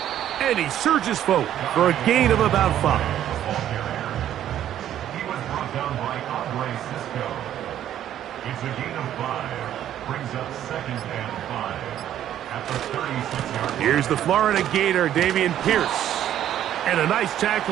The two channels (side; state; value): left; quieter; 11.3 dB